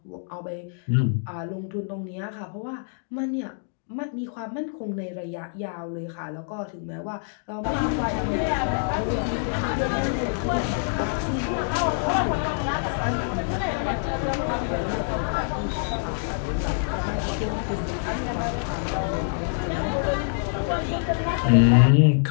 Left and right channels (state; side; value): silent; right; digital silence